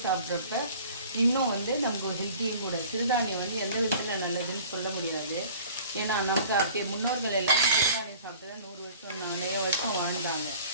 சாப்பிட்றப்ப இன்னும் வந்து நமக்கு ஒரு ஹெல்த்தியும் கூட. சிறுதானியம் வந்து எந்த விதத்தில் நல்லதுன்னு சொல்ல முடியாது. ஏன்னா நமக்கு அப்படியே முன்னோர்கள் எல்லாமே சிறுதானியம் சாப்பிட்டு தான் 100 வருஷம் 4 வருஷம் வாழ்ந்தாங்க.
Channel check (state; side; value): inverted; both; correlation -0.47